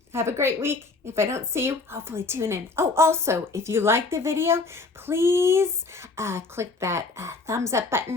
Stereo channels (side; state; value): right; quieter; 3.8 dB